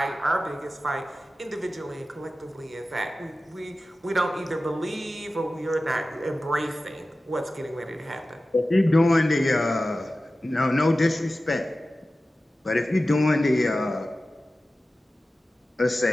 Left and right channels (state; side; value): normal; both; correlation 0.95